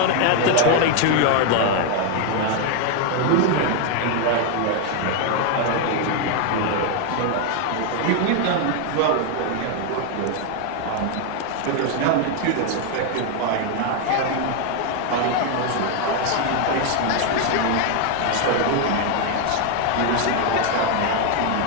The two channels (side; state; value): both; different; correlation 0.01